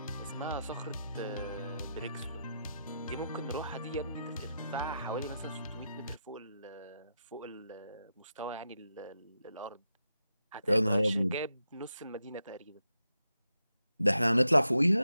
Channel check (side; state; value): both; inverted; correlation -0.86